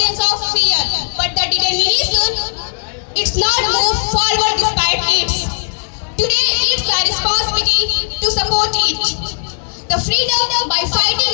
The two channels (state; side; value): silent; right; digital silence